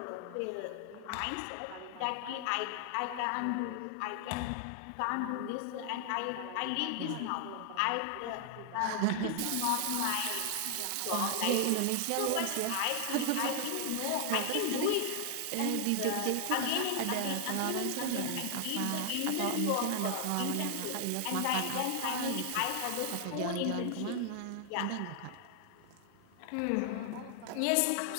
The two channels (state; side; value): different; both; correlation 0.00